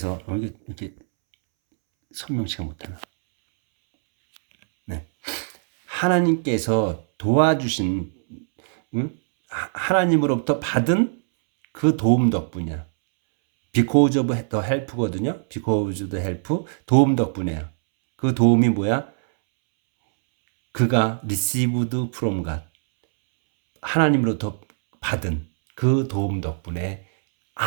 이렇게 설명치가 못하나? 네. 하나님께서 도와주신 하나님으로부터 받은 그 도움 덕분이야. because of the help거든요. because of the help 도움 덕분이에요. 그 도움이 뭐야? 그가 received from God 하나님으로부터 받은 그 도움 덕분에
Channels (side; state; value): left; silent; 64 dB below the other